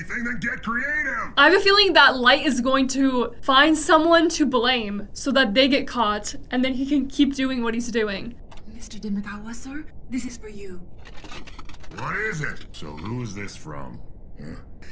then get creative! I have a feeling that Light is going to find someone to blame so that they get caught and then he can keep doing what he's doing. Mr. Demagawa, sir, this is for you. What is it? So who is this from?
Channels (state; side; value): identical; both; correlation 1.00